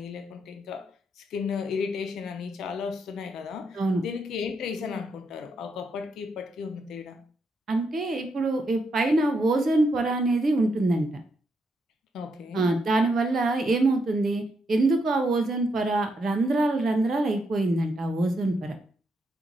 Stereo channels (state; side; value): normal; both; correlation 0.80